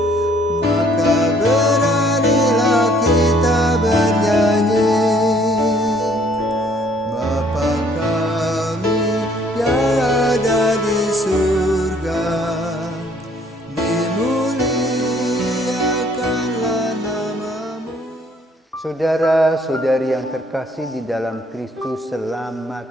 maka beranilah kita bernyanyi. Bapa kami yang ada di surga, dimuliakanlah namamu. Saudara-saudari yang terkasih di dalam Kristus, selamat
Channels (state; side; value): normal; both; correlation 0.61